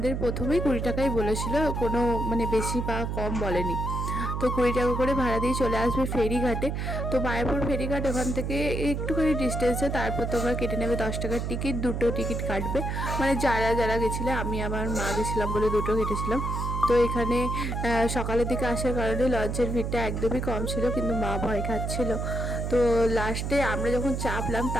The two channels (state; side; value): noise; right; hum, 2 dB below the sound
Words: প্রথমেই 20 টাকাই বলেছিল, কোনো মানে বেশি বা কম বলেনি। তো 20 টাকা করে ভাড়া দিয়ে চলে আসবে ফেরিঘাটে। তো মায়াপুর ফেরিঘাট ওখান থেকে একটুখানি ডিস্টেন্সে। তারপর তোমরা কেটে নেবে 10 টাকার টিকিট, দুটো টিকিট কাটবে। মানে যারা যারা গেছিলে, আমি আমার মা গেছিলাম বলে দুটো কেটেছিলাম। তো এখানে সকালের দিকে আসার কারণে লঞ্চের ভিড়টা একদমই কম ছিল, কিন্তু মা ভয় খাচ্ছিল। তো লাস্টে আমরা যখন চাপলাম